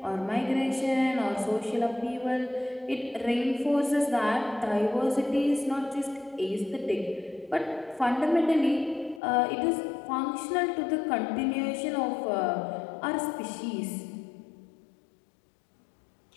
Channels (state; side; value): drops out; right; at 9.2 s